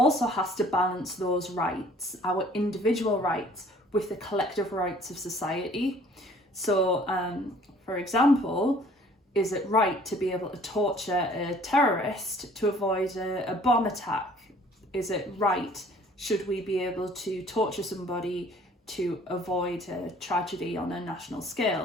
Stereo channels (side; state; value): both; normal; correlation 0.54